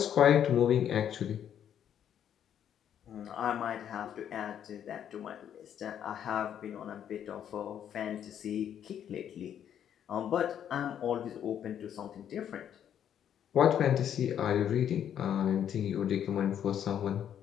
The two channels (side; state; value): right; quieter; 9.5 dB